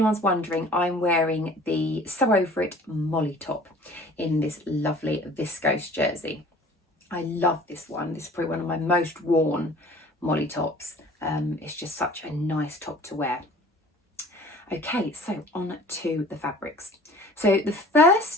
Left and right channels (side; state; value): both; normal; correlation 0.48